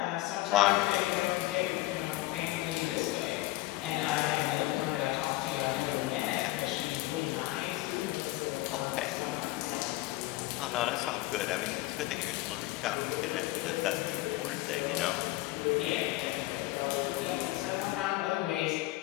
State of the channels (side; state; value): right; quieter; 18.4 dB